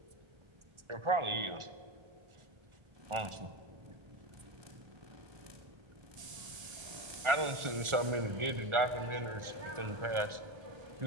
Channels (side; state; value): left; late; 1.4 ms